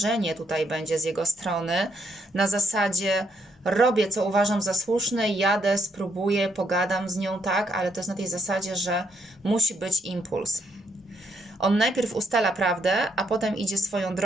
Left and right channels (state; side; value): normal; both; correlation 0.74